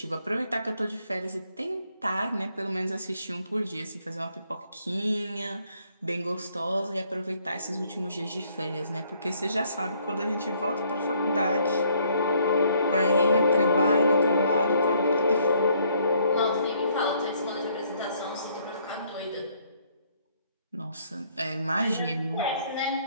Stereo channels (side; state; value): both; inverted; correlation -0.66